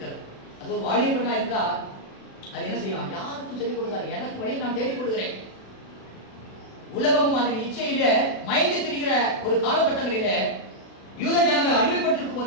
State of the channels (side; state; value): right; late; 36 ms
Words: அது ஒரு வாலிப பெண்ணா இருந்தா அது என்ன செய்யும்? யாருக்கும் சொல்லிக் கொடுத்தாரு, எனக்கு வழியை நான் தேடிக் கொடுக்கிறேன். உலகமும் அதன் இச்சையில மயங்கி திரிகிற ஒரு காலகட்டங்களிலே யூத ஜனங்கள் அடிமைப்பட்டிருக்கும்